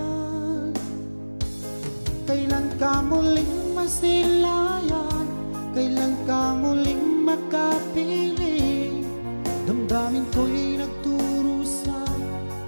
Kailan ka muling masilayan? Kailan ka muling makapiling? Damdamin ko'y nagturusan,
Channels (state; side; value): inverted; both; correlation -1.00